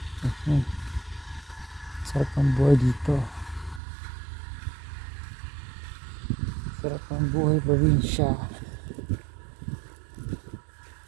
Sarap ang buhay dito. Sarap ang buhay probinsya.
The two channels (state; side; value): drops out; left; at 3.8 s